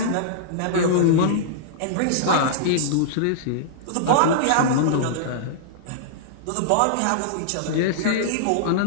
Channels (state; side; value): different; both; correlation -0.02